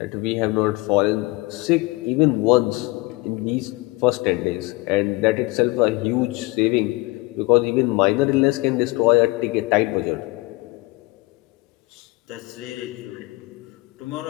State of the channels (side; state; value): right; quieter; 22.8 dB